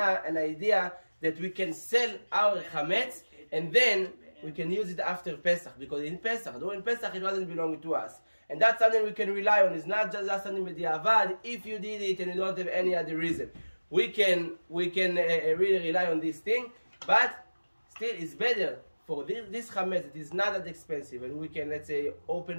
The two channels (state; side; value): inverted; both; correlation -1.00